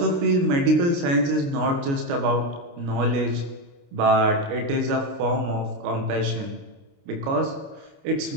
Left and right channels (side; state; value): left; late; 29 ms